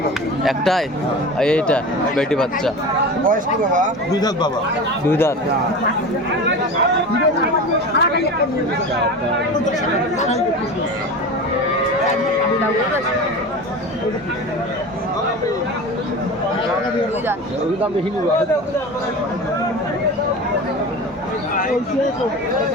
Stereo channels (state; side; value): normal; both; correlation 0.31